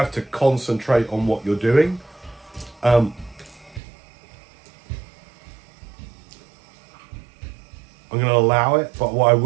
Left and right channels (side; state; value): left; drops out; at 3.8 s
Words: to concentrate on what you're doing. I'm going to allow it, but what I